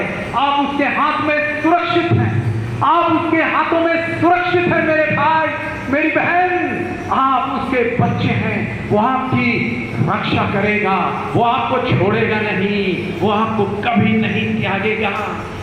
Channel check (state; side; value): identical; both; correlation 1.00